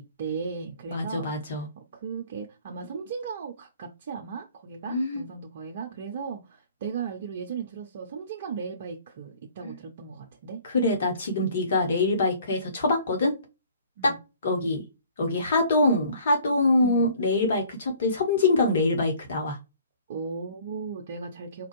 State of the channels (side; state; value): both; inverted; correlation -0.53